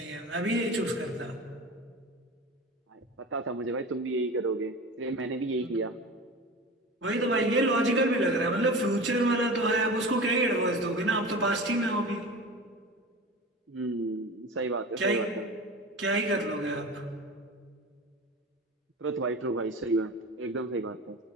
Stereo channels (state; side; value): normal; both; correlation 0.32